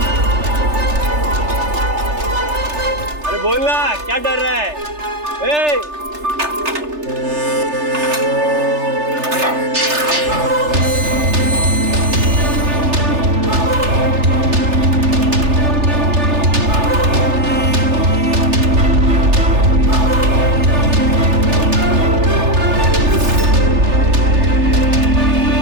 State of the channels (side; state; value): left; late; 3.3 ms